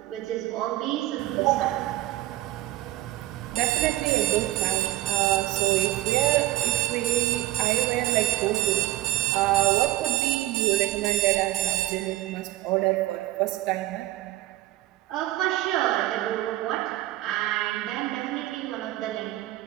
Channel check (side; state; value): left; quieter; 17.5 dB